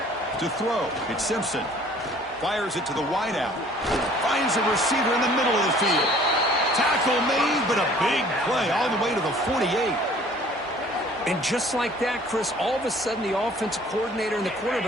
To throw, it's Simpson. Fires it to the wideout. Finds a receiver in the middle of the field. Tackle made, but a big play all the way to the 48. And just like that, Chris, all of a sudden the offensive coordinator and the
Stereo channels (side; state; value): both; normal; correlation 0.53